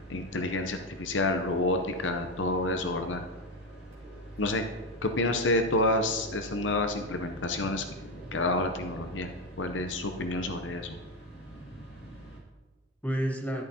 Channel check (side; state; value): both; normal; correlation 0.13